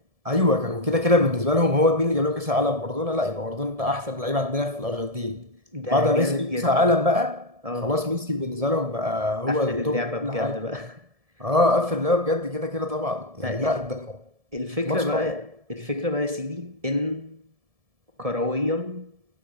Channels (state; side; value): late; left; 1.7 ms